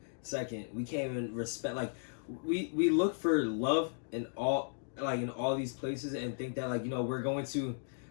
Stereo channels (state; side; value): silent; right; digital silence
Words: Second, we can't even respect. Like, we look for love in all these places and think that we're going to